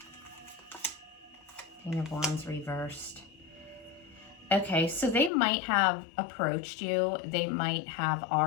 King of Wands reversed. Okay, so they might have approached you. They might have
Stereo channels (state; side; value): drops out; right; at 5.3 s